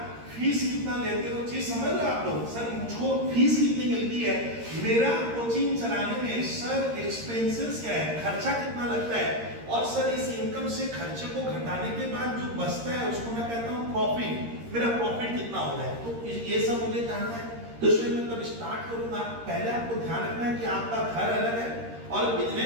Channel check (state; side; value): late; left; 13 ms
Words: फीस कितना लेते हो, चीज समझ रहे हो आप लोग। सर मुझको फीस कितनी मिलती है, मेरा कोचिंग चलाने में सर एक्सपेंसेस क्या है, खर्चा कितना लगता है, और सर इस इनकम से खर्चे को घटाने के बाद जो बचता है उसको मैं कहता हूँ प्रॉफिट, मेरा प्रॉफिट कितना हो रहा है। तो ये सब मुझे जानना है। तो इसमें मैं तब स्टार्ट करूंगा। पहले आपको ध्यान रखना है कि आपका घर अलग है और